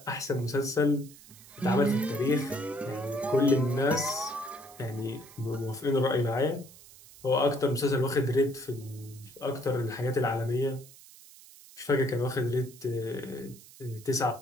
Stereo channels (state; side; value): noise; right; hiss, 21 dB below the sound